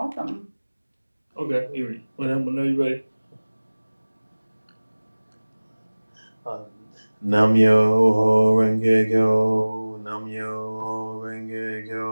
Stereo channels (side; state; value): both; inverted; correlation -1.00